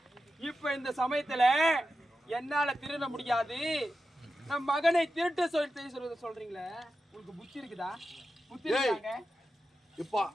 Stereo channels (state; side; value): normal; both; correlation 0.91